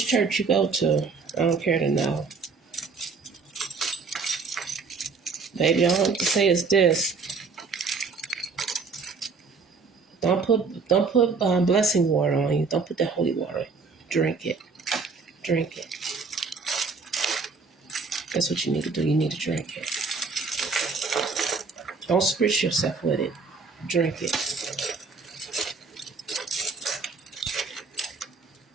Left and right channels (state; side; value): quieter; left; 4.7 dB